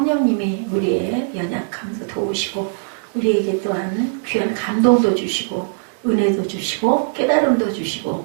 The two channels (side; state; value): left; silent; digital silence